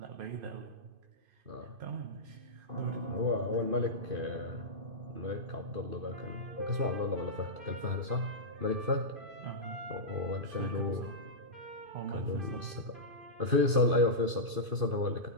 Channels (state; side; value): late; left; 2.5 ms